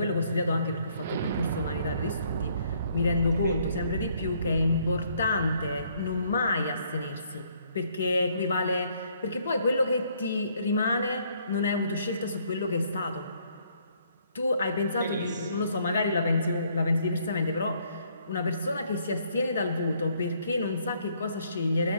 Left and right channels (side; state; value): both; inverted; correlation -0.67